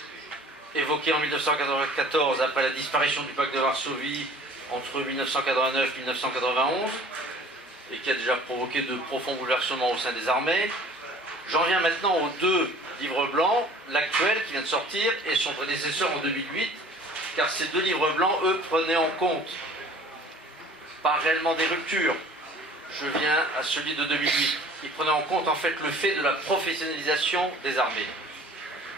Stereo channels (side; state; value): both; normal; correlation 0.48